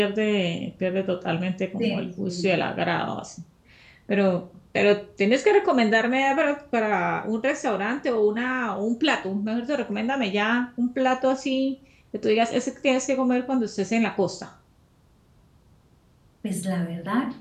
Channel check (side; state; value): both; identical; correlation 1.00